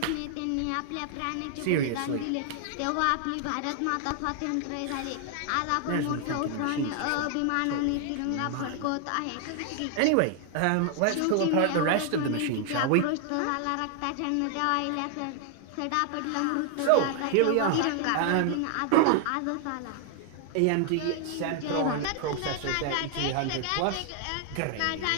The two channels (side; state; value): both; different; correlation 0.00